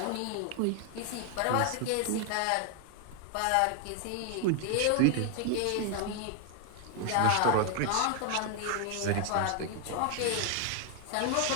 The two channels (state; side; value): different; both; correlation 0.00